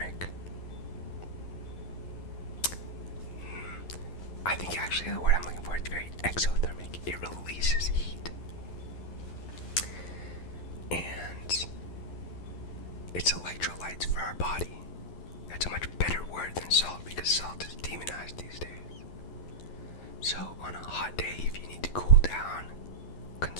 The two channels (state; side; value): late; right; 11 ms